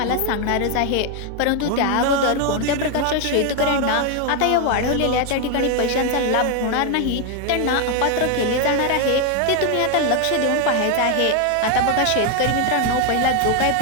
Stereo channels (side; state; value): both; different; correlation 0.01